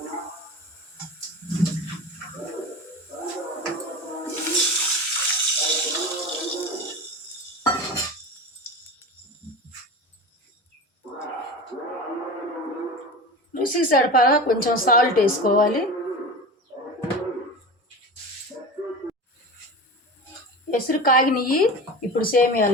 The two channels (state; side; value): normal; both; correlation 0.30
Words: రుచికి సరిపడా కొంచెం సాల్ట్ వేసుకోవాలి. ఎసురు కాగినవి. ఇప్పుడు